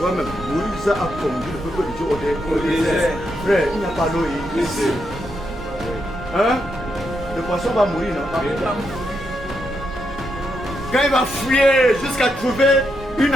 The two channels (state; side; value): normal; both; correlation 0.81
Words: Moïse a conduit le peuple de Dieu au désert. Frère, il n'y a pas d'eau ici. Le poisson va mourir, non? Quand il va fouiller jusqu'à trouver une